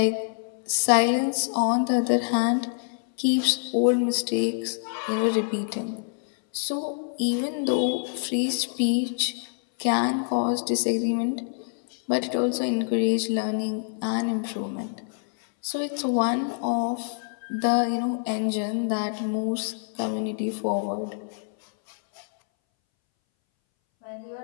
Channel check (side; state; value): right; silent; 61 dB below the other